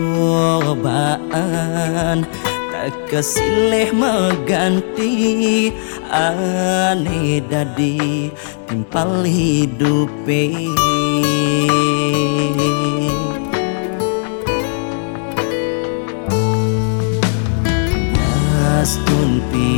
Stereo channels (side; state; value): right; silent; 67 dB below the other